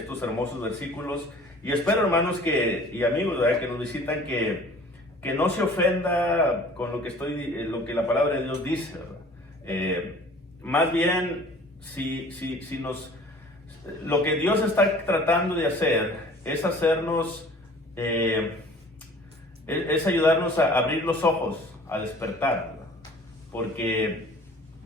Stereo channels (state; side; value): normal; both; correlation 0.48